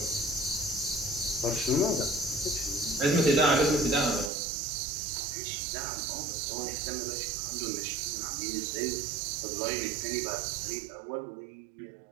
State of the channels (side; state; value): left; drops out; at 4.3 s